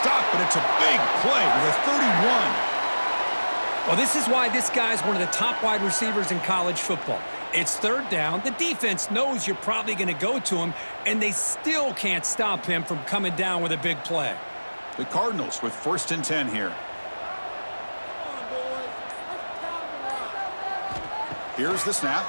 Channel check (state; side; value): inverted; both; correlation -1.00